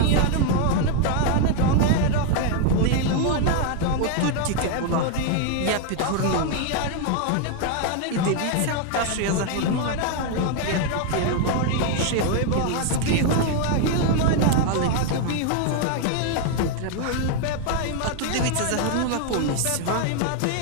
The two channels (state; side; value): different; both; correlation 0.00